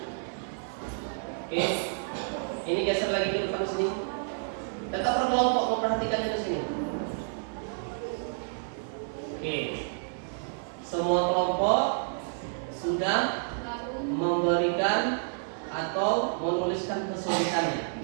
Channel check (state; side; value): silent; left; digital silence